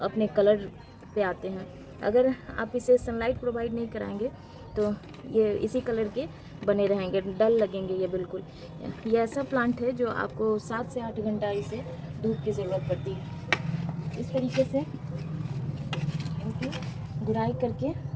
कलर पे आते हैं। अगर आप इसे सनलाइट प्रोवाइड नहीं कराएंगे तो ये इसी कलर के बने रहेंगे, डल लगेंगे ये बिल्कुल। ये ऐसा प्लांट है जो आपको 7 से 8 घंटा इसे धूप की ज़रूरत पड़ती है। इस तरीके से इनकी गुड़ाई करके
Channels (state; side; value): identical; both; correlation 1.00